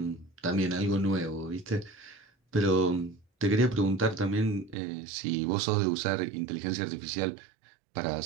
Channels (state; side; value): drops out; left; at 4.8 s